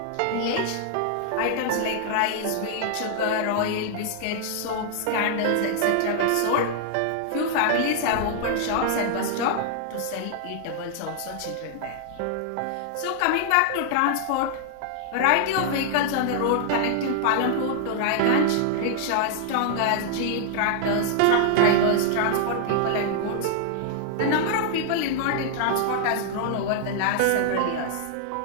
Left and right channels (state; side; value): different; both; correlation -0.01